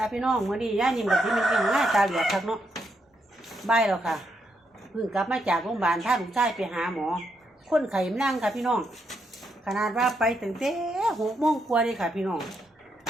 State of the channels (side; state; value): both; normal; correlation 0.79